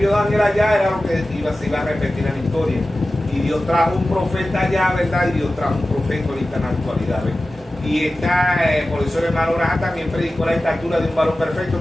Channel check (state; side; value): normal; both; correlation 0.95